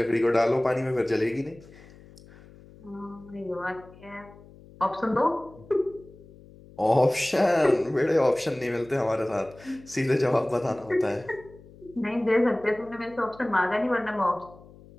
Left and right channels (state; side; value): noise; left; hum, 22 dB below the sound